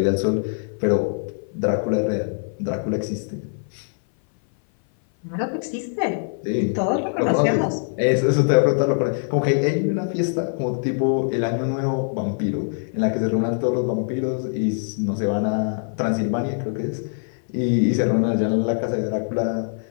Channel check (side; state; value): right; silent; 58 dB below the other